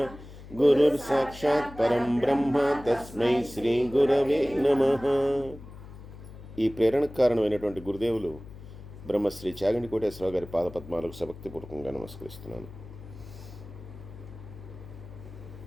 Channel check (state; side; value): noise; left; hum, 16 dB below the sound